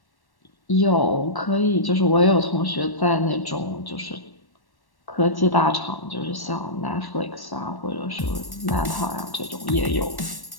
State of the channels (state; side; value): late; right; 1.1 ms